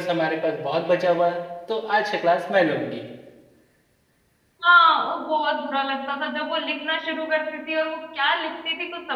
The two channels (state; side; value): identical; both; correlation 1.00